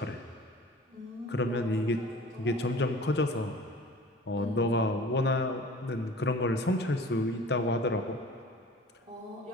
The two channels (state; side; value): normal; both; correlation 0.43